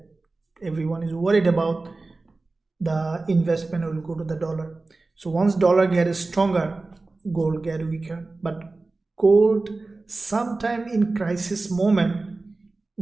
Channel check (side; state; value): left; quieter; 3.4 dB